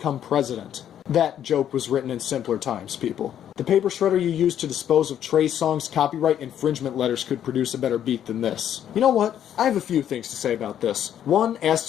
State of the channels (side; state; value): right; quieter; 10.1 dB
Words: president. That joke was written in simpler times, people. The paper shredder you used to dispose of Trey Songz's copyright infringement letters could produce a better beat than this. You know what? I have a few things to say about this. One, as